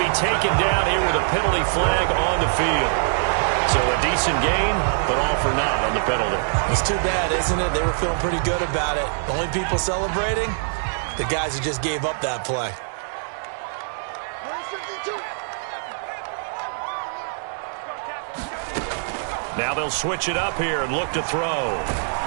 be taken down here with a penalty flag on the field. So a decent gain, but all for naught on the penalty. It's too bad, isn't it? They were feeling pretty good about it. The only people celebrating, the guys who just gave up that play. Now they'll switch it up here and look to throw.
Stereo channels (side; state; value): left; silent; digital silence